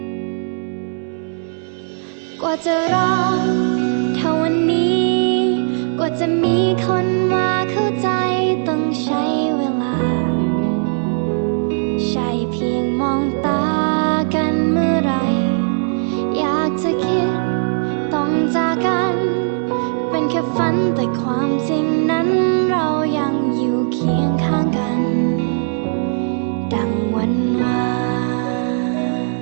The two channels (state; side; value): silent; left; 58 dB below the other